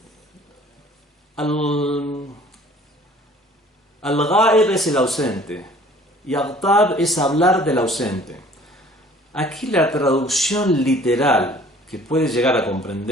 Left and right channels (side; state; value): both; normal; correlation 0.53